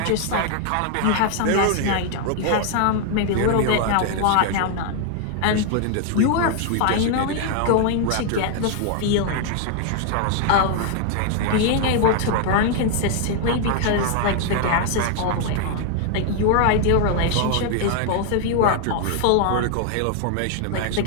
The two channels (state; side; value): different; both; correlation 0.00